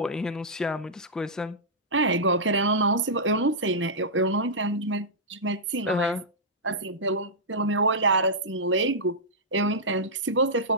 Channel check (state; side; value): normal; both; correlation -0.11